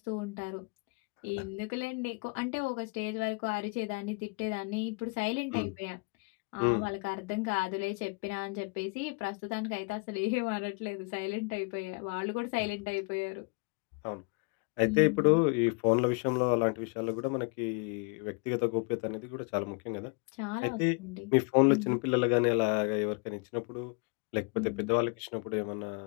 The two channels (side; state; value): right; quieter; 32.4 dB